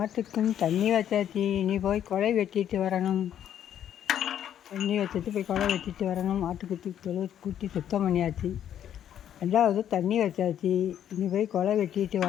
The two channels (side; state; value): right; quieter; 10.1 dB